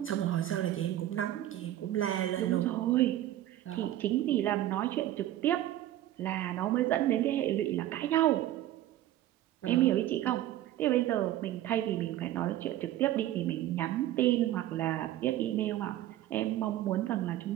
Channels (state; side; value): quieter; left; 13.5 dB